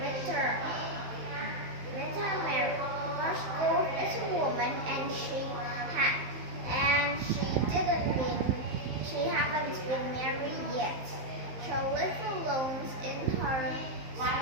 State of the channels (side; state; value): left; late; 15 ms